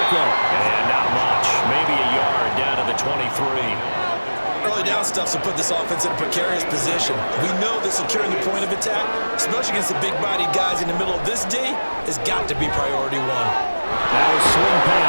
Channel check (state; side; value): inverted; both; correlation -1.00